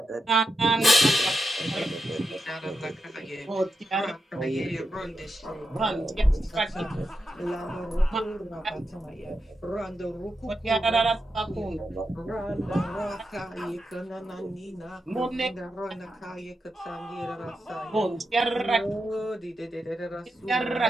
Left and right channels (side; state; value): both; normal; correlation 0.87